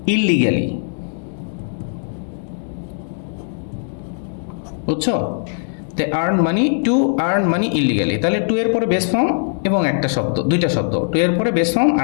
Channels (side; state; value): right; silent; 66 dB below the other